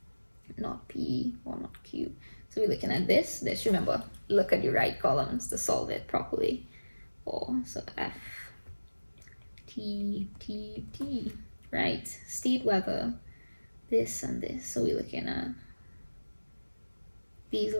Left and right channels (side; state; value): both; inverted; correlation -1.00